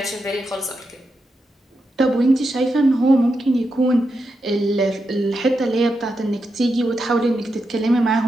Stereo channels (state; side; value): normal; both; correlation 0.86